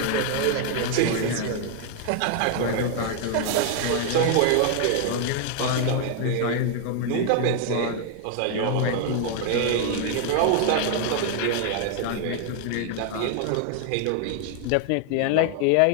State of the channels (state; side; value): different; both; correlation 0.00